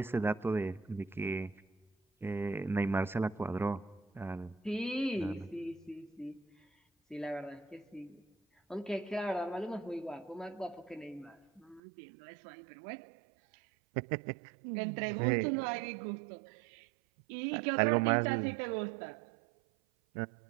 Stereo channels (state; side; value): drops out; left; at 11.8 s